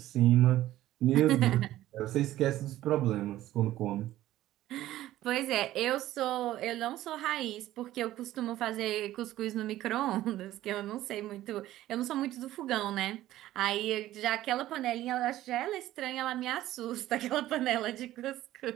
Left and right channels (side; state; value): left; quieter; 14.5 dB